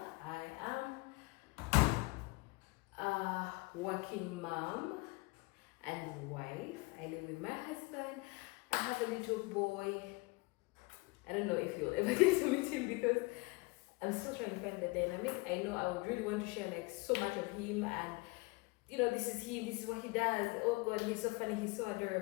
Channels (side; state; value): right; quieter; 25.6 dB